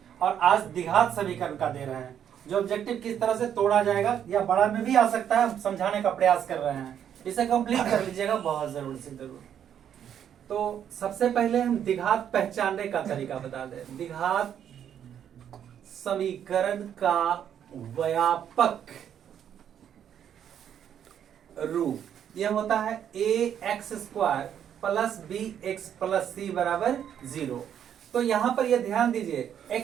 और आज द्विघात समीकरण का दे रहे हैं। जो ऑब्जेक्टिव किस तरह से तोड़ा जाएगा या बड़ा में भी आ सकता है, हम समझाने का प्रयास कर रहे हैं। इसे कंप्लीट कर लीजिएगा, बहुत जरूर से जरूर। तो सबसे पहले हम द्विघात पहचानने का तरीका बता दें। द्विघात समीकरण का व्यापक रूप यह होता है ax² plus bx plus c बराबर 0। तो यहां पर यह ध्यान दीजिए,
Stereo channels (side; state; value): left; quieter; 9.2 dB